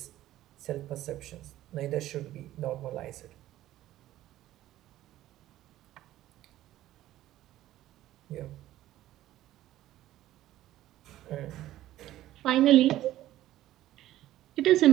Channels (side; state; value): left; quieter; 14.2 dB